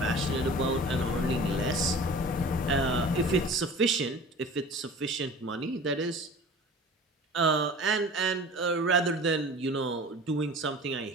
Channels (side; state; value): both; normal; correlation 0.41